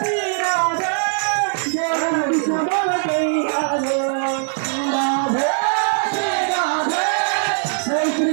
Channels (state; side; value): silent; left; digital silence